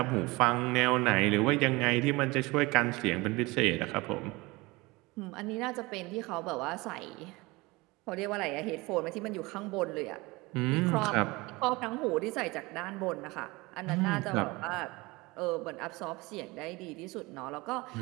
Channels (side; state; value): left; quieter; 23.0 dB